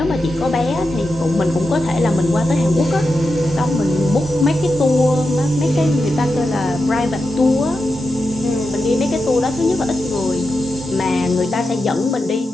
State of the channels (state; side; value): normal; both; correlation 0.89